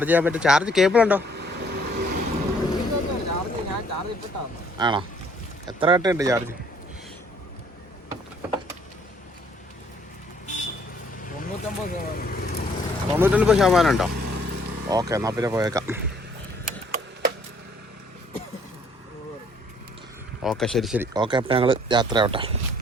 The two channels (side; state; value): both; normal; correlation 0.61